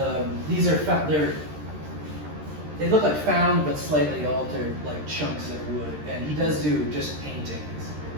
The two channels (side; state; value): left; late; 13 ms